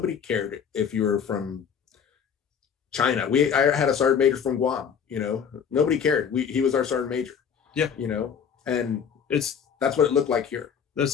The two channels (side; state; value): right; quieter; 7.4 dB